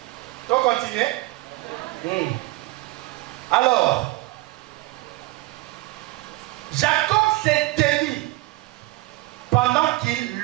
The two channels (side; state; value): left; quieter; 20.2 dB